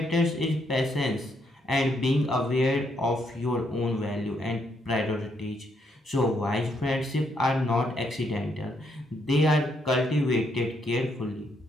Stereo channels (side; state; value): both; normal; correlation 0.75